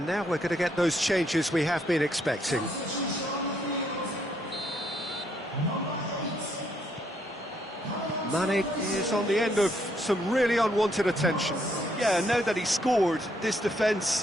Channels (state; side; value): normal; both; correlation 0.72